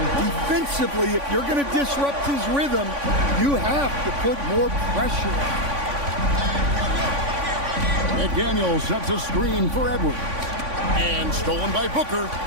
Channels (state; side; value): late; left; 3.5 ms